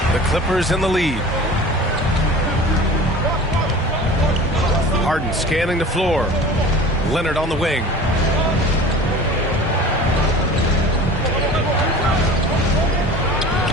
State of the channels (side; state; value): both; normal; correlation 0.40